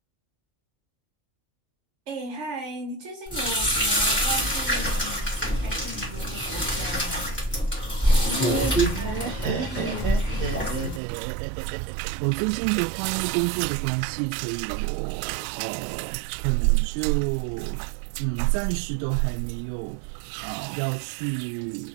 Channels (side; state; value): left; drops out; at 11.0 s